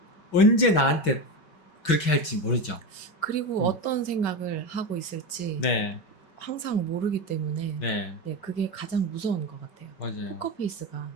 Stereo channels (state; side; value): late; right; 5.3 ms